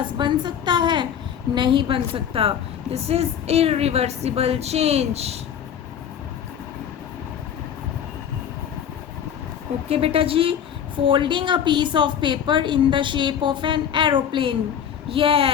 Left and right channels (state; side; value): quieter; right; 8.8 dB